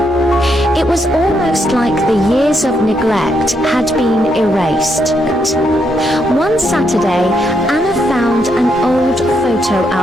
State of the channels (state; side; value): normal; both; correlation 0.78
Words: It was almost like the years of neglect had been erased. One Saturday, Anna found an old photo